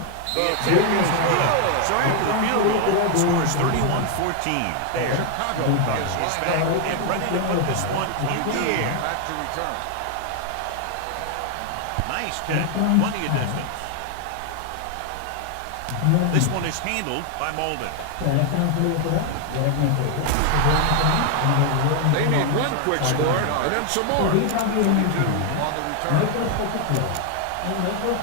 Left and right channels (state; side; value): different; both; correlation 0.00